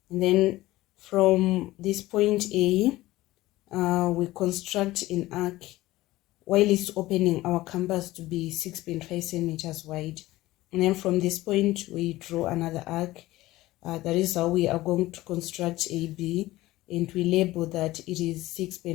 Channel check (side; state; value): right; quieter; 17.4 dB